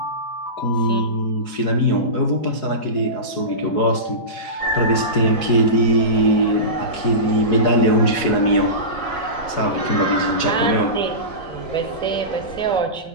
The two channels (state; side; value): late; right; 4.8 ms